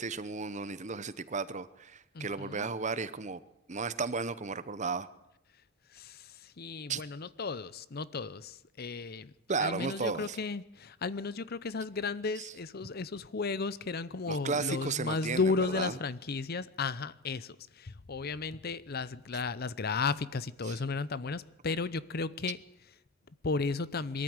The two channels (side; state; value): both; normal; correlation 0.17